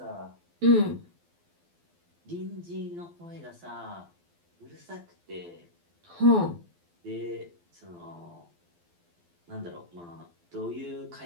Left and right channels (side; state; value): left; late; 12 ms